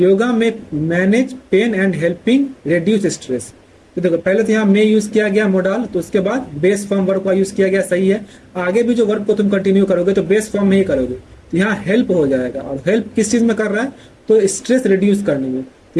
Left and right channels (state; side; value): identical; both; correlation 1.00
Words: में manage pain and helping reduce stress. तो देखो पहले तो यहाँ में यूज किया गया मोडाल, तो उसके बाद बेस फॉर्म वर्ब का यूज किया गया, सही है। आगे भी जो वर्ब को तुम कंटिन्यू करोगे तो बेस फॉर्म में ही करोगे, तो यहाँ हेल्प हो जाएगा। और हेल्प किस चीज में कर रहा है? तो स्ट्रेस रिड्यूस करने में। तो